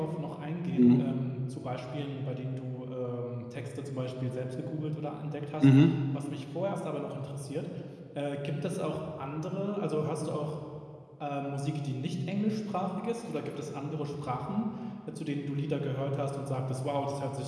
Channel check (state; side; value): identical; both; correlation 1.00